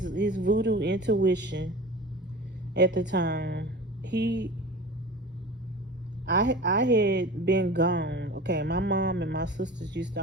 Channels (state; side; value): normal; both; correlation 0.35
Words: voodoo intuition at the time. He I had been gone. Okay, my mom and my sisters used to